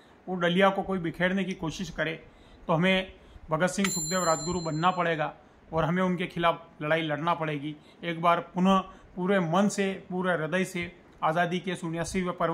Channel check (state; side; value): identical; both; correlation 1.00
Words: वो डलिया को कोई बिखेरने की कोशिश करे तो हमें भगत सिंह, सुखदेव, राजगुरु बनना पड़ेगा और हमें उनके खिलाफ लड़ाई लड़ना पड़ेगी। एक बार पुनः पूरे मन से, पूरे हृदय से आज़ादी के 79वें